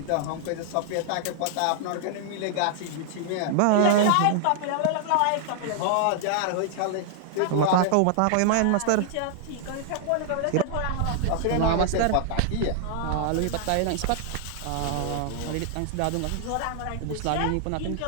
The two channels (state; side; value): different; both; correlation 0.00